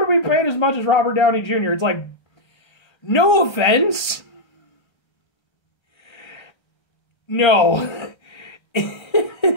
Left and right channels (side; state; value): right; late; 1.3 ms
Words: to be paid as much as Robert Downey Jr. It's like, no offense. No.